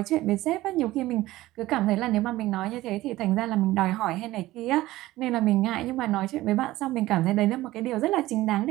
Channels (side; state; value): left; quieter; 17.0 dB